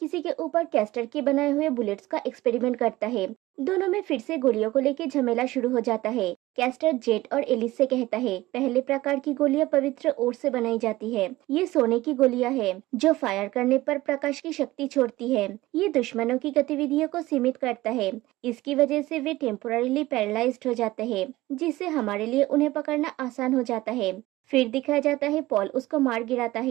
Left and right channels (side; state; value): left; quieter; 18.0 dB